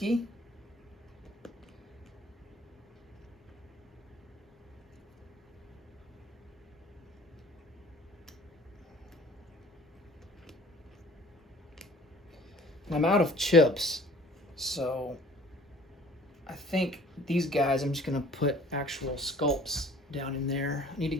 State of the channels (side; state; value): both; normal; correlation 0.51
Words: And I'm out of chips, so I think these guys, I'm just going to put actual sculpts down in there. I need to